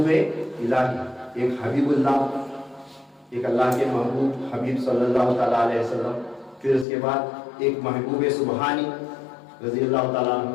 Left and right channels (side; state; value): right; drops out; at 6.9 s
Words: الہی, ایک حبیب اللہ, ایک اللہ کے محبوب حبیب صلی اللہ تعالیٰ علیہ وسلم, پھر اس کے بعد ایک محبوب سبحانی رضی اللہ تعالیٰ عنہ,